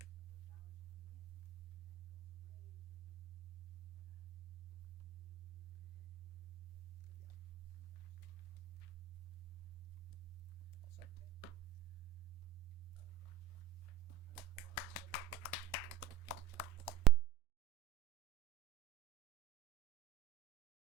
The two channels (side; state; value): left; quieter; 10.6 dB